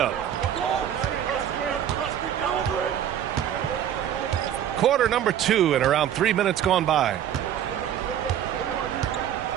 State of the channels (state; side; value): quieter; left; 10.2 dB